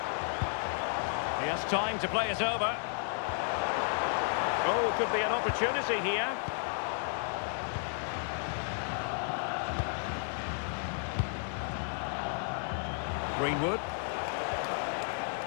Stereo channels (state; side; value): silent; right; 56 dB below the other